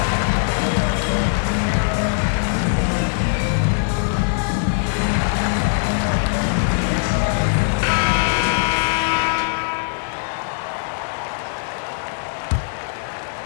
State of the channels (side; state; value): right; silent; digital silence